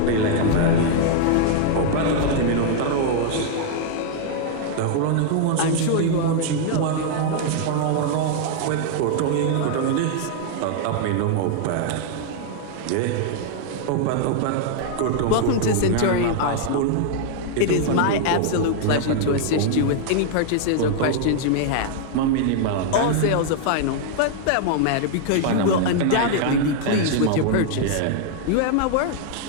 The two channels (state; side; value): different; both; correlation 0.00